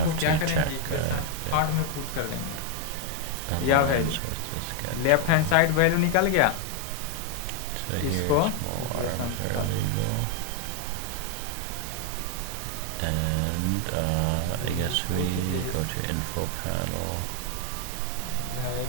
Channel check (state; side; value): different; both; correlation 0.00